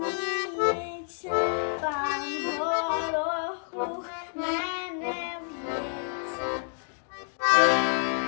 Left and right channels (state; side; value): silent; right; 59 dB below the other